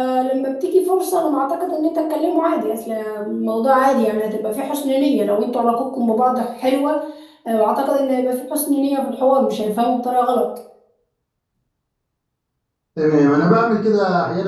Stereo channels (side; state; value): both; identical; correlation 1.00